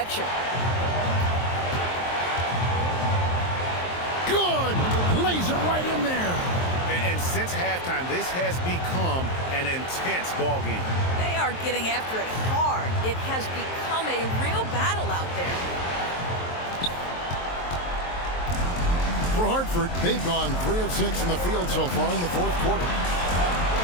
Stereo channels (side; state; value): right; late; 23 ms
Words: Good! Lays it right in there. And since halftime, this has become an intense ball game. They are getting after it hard. It has become a real battle out there. For Hartford, they've gone 3 of 6 in the field so far in the fourth quarter.